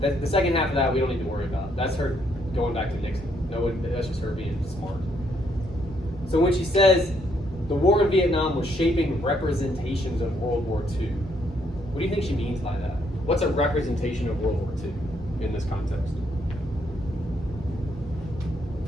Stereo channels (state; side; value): normal; both; correlation 0.72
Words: second half of that we don't need to worry about. That's her going back to Nixon. That's just her being smart. So when she says the war in Vietnam was shaping representations of World War II, what do you think she means by that? What's a representation of World War II in this context?